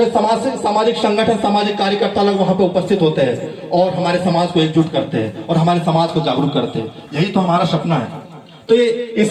सामाजिक संगठन, सामाजिक कार्यकर्ता लोग वहां पे उपस्थित होते हैं और हमारे समाज को एकजुट करते हैं और हमारे समाज को जागरूक करते हैं। यही तो हमारा सपना है। तो ये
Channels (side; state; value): both; identical; correlation 1.00